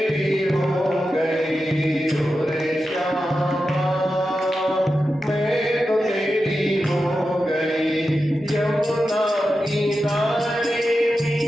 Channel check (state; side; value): normal; both; correlation 0.91